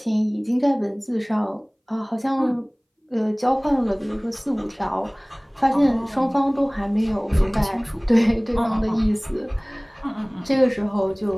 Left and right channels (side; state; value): both; identical; correlation 1.00